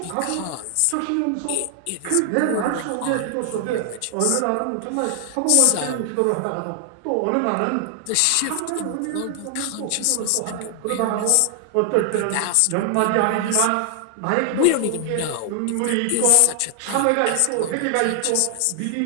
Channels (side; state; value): both; different; correlation 0.00